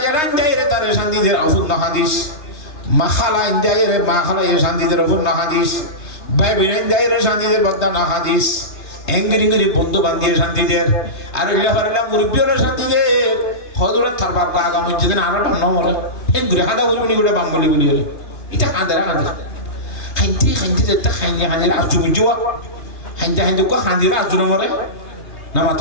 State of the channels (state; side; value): late; right; 3.2 ms